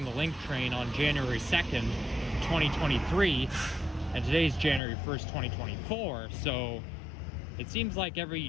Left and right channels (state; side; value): drops out; right; at 4.8 s